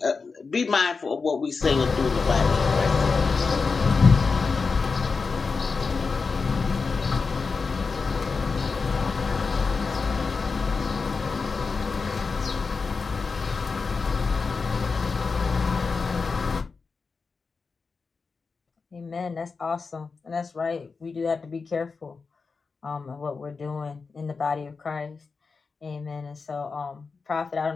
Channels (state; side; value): quieter; right; 4.7 dB